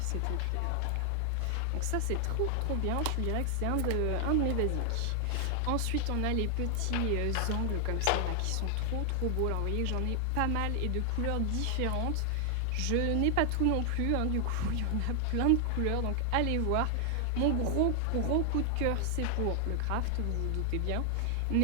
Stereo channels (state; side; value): different; both; correlation 0.00